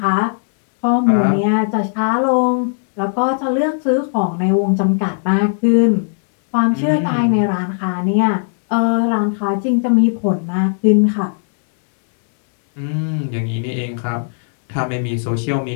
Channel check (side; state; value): right; silent; digital silence